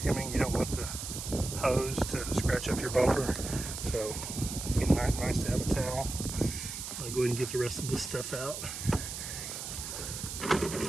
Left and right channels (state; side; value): noise; right; hiss, 7 dB below the sound